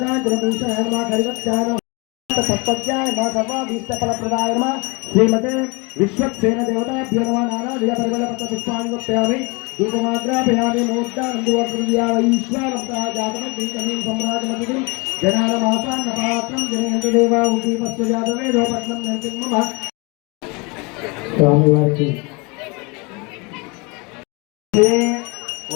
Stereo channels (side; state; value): right; quieter; 28.9 dB